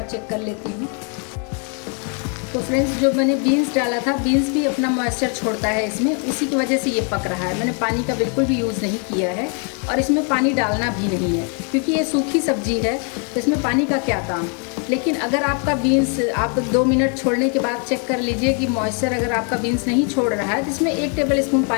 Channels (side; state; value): right; quieter; 39.5 dB